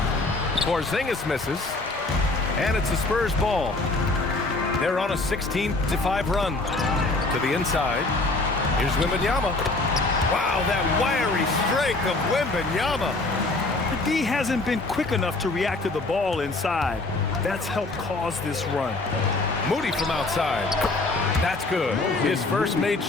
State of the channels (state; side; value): quieter; right; 3.1 dB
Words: Porzingis misses, and it's the Spurs ball. They're on a 16-5 run to the inside. Here's Wembanyama. Wow, that wiry strength of Wembanyama. The D hasn't been quick enough to react to the ball inside. That's helped cause this run. Moody from outside. That's good. His first made